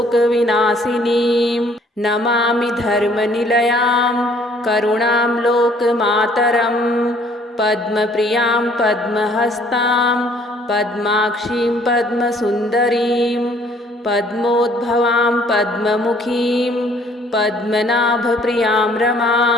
नमामि धर्मनिलयां करुणां लोकमातरं पद्मप्रियां पद्महस्तां पद्माक्षीं पद्मसुन्दरीं पद्मोद्भवां पद्ममुखीं पद्मनाभप्रियां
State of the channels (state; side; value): normal; both; correlation 0.60